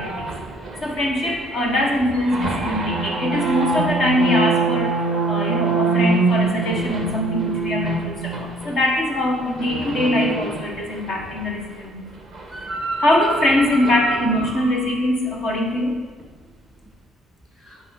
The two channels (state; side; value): normal; both; correlation 0.60